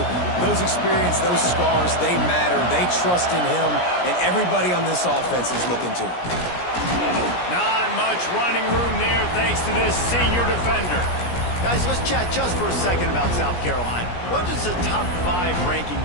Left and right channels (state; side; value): late; right; 17 ms